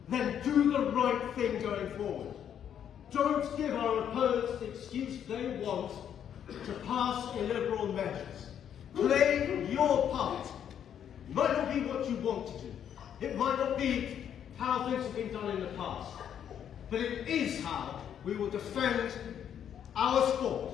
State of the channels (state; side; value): quieter; right; 9.2 dB